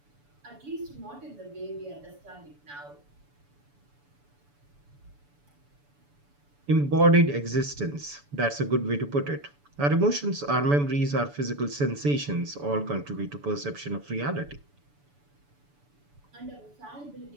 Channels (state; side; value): late; left; 6.9 ms